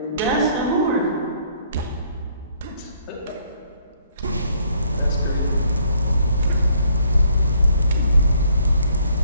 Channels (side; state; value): both; inverted; correlation -0.65